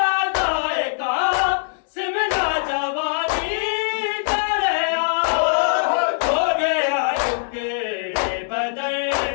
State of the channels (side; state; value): right; silent; digital silence